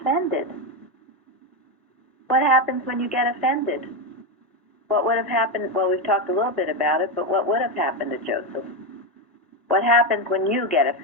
What happens when you get offended? What would have happened? Well, we've talked a little bit about it, but what would have happened to Joseph? What happens when you get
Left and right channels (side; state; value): both; normal; correlation 0.10